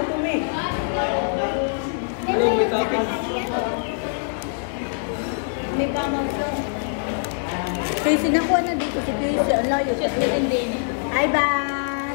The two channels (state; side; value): silent; right; 63 dB below the other